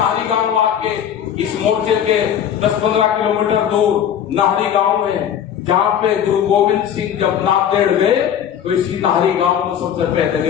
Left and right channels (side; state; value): right; quieter; 9.3 dB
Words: गांव आके इस मोर्चे के 10-15 किलोमीटर दूर नाहरी गांव है, जहां पे गुरु गोविंद सिंह जब नांदेड़ गए तो इसी नाहरी गांव में सबसे पहले